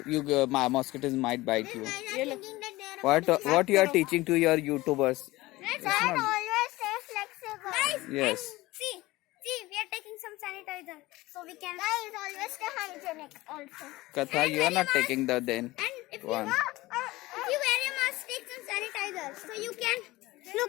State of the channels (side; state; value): right; quieter; 19.3 dB